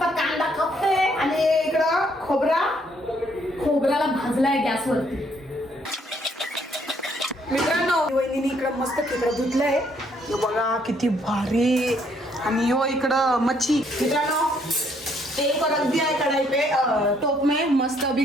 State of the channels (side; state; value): both; normal; correlation 0.68